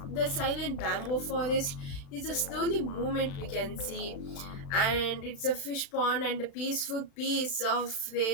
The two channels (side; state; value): right; late; 36 ms